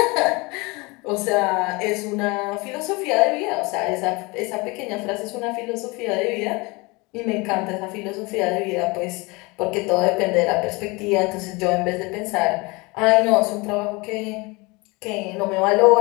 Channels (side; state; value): right; quieter; 25.9 dB